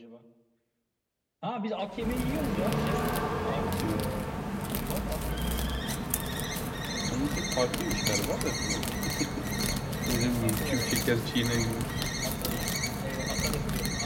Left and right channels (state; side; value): identical; both; correlation 1.00